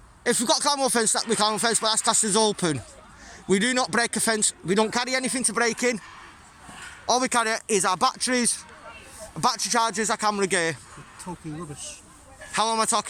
If we've got climb fence, we climb fence, but that's classed as open. We do not break a fence. We don't carry anything to break in. All we carry is our batteries, battery chargers, our camera gear. Talking rubbish. How am I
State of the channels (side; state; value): both; identical; correlation 1.00